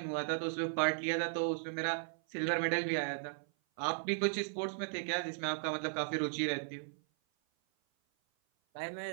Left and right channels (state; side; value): silent; left; 54 dB below the other